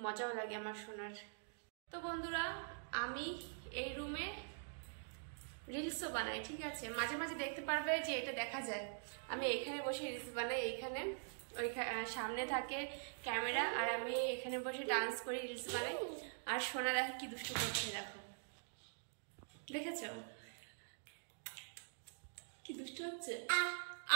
মজাও লাগে আমার সোনার। তো বন্ধুরা, আমি এই রুমে রিলসও বানাই, ঠিক আছে? মাঝে মাঝে দেখতে পারবে যে এটা দেখা যায়, আমি এখানে বসে রিলস বানাই। এইখানে ওই সামনে থাকে ক্যামেরা, আর আমি এখানে বসে ডান্স করি, রিলস বানাই। আর সোনা দেখো কি দুষ্টু করছে, দেখো, দেখেছ কি দুষ্টু হচ্ছে?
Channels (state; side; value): silent; left; digital silence